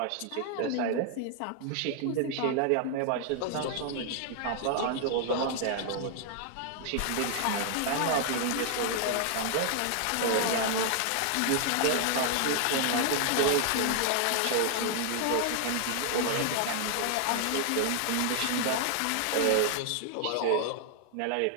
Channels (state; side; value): different; both; correlation 0.00